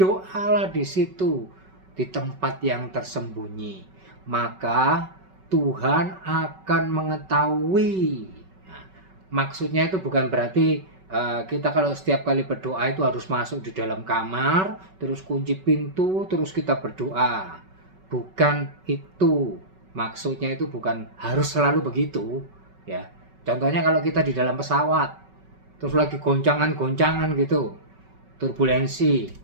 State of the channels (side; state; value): left; late; 5.3 ms